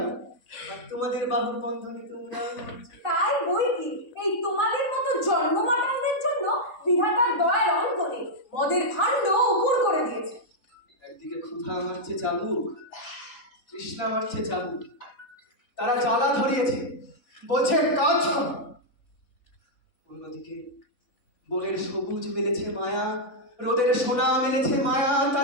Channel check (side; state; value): right; late; 3.9 ms